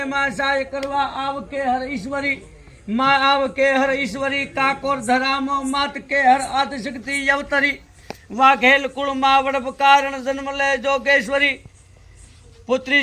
माँ सहाय करवा आव के हर ईश्वरी माँ आव के हर ईश्वरी काकोर धरामो मात के हर आद शक्ति यवतरी वाघेल कुल माँ वड़प कारण जन्म ले जोगेश्वरी पुत्री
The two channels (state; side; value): identical; both; correlation 1.00